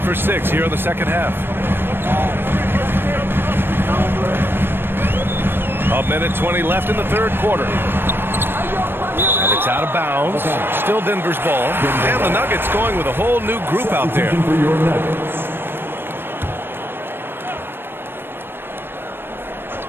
for 6 here in the second half. 1:20 left in the third quarter. And it's out of bounds. Still Denver's ball. And the Nuggets going with a whole new group out there.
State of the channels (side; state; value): left; late; 0.10 ms